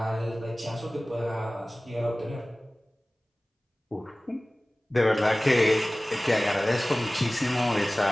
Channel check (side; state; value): both; normal; correlation 0.98